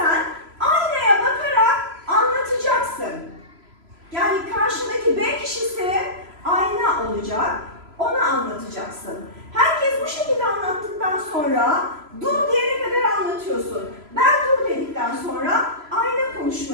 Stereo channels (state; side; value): late; left; 3.0 ms